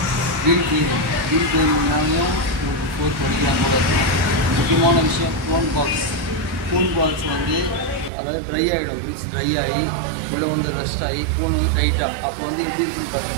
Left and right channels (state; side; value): drops out; left; at 8.1 s